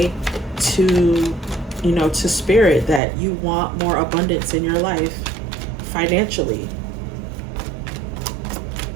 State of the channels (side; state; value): left; drops out; at 3.0 s